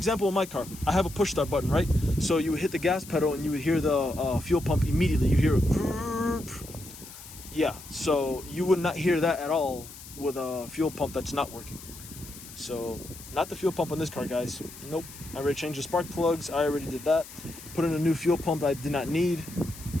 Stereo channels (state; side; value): noise; left; hiss, 16 dB below the sound